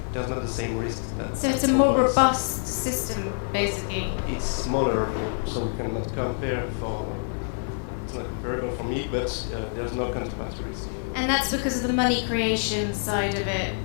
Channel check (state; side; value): silent; right; digital silence